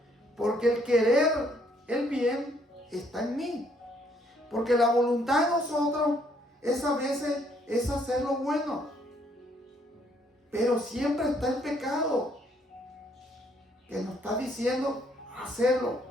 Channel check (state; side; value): normal; both; correlation 0.67